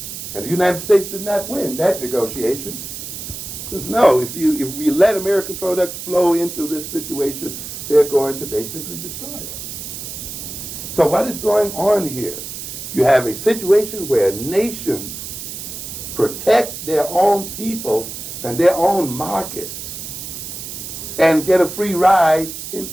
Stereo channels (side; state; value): right; noise; hiss, 9 dB below the sound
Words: And the United States did not win that negotiation. It says, no, if we let American products flow into this situation, they're going to basically destroy us. So what is going on here? You have a situation where nations protect their own people and their own markets and get a free ride in